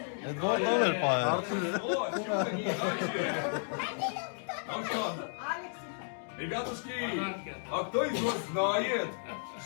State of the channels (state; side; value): silent; right; digital silence